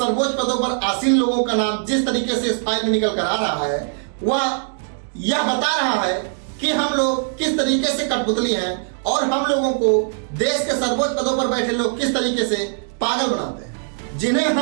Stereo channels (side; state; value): left; silent; 65 dB below the other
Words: पदों पर आसीन लोगों का नाम जिस तरीके से इस फाइल में निकल कर आ रहा है, वह यह बता रहा है कि हम लोग किस तरीके से कठपुतली हैं और हम लोगों को देश के सर्वोच्च पदों पर बैठे लोग किस तरीके से पागल बनाते हैं। जिन्हें